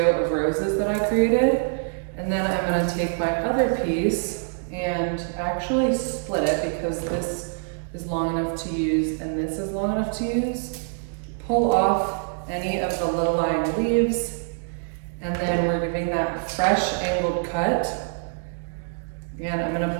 of roses that I created. And then I'm gonna take my other piece and actually split it because this is long enough to use and this is long enough to use. Pull off any of the little lying leaves, and then we're giving that fresh angled cut. And I'm gonna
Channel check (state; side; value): silent; left; digital silence